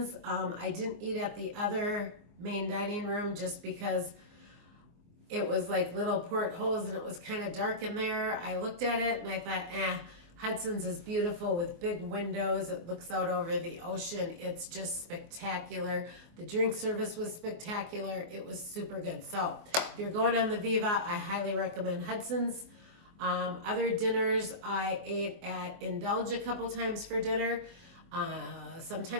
I didn't eat at the other main dining room just because it was like little portholes and it was kind of dark in there. I looked at it and I thought, Hudson's is beautiful with big windows. It looks out over the ocean. It's just spectacular. The drink service was spectacular. It was super good. So if you're going on the Viva, I highly recommend Hudson's. Other dinners, I ate at Indulge a couple times for dinner.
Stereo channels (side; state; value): left; late; 24 ms